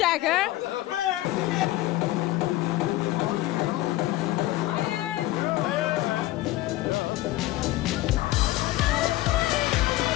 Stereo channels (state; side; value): quieter; right; 16.7 dB